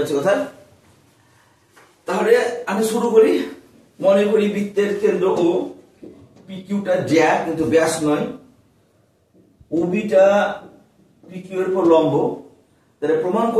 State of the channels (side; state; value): both; identical; correlation 1.00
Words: কথা? তাহলে আমি শুরু করি। মনে করি বৃত্তের কেন্দ্র ও পিকিউটা জ্যা কিন্তু ব্যাস নয়, ওবিটা পিকিউ এর উপর লম্ব, তাহলে প্রমাণ